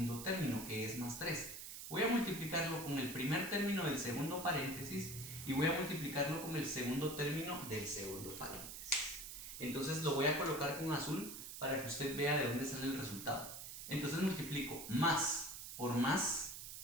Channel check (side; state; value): right; noise; hiss, 9 dB below the sound